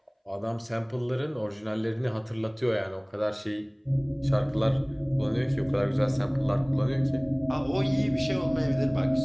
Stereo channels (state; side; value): identical; both; correlation 1.00